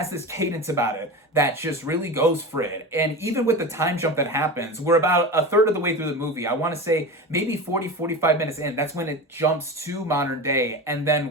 this cadence about it that just really goes for it. And even with the time jump that happens, we're about a third of the way through the movie. I want to say maybe 45 minutes in. That's when it jumps to modern day. And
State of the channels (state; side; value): normal; both; correlation 0.27